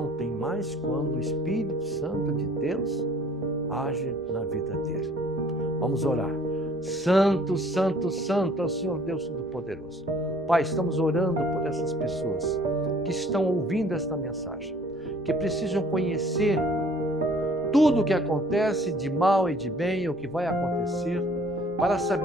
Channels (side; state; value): both; normal; correlation 0.55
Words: têm mais quando o Espírito Santo de Deus age na vida dele. Vamos orar. Santo, santo, santo é o Senhor Deus Todo-Poderoso. Pai, estamos orando por essas pessoas que estão ouvindo esta mensagem, que precisam conhecer tudo o que acontece de mal e de bem, o que vai acontecer, para